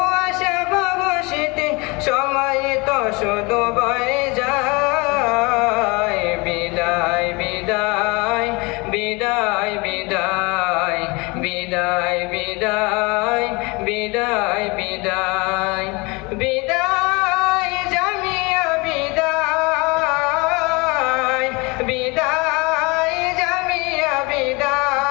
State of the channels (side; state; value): right; quieter; 26.6 dB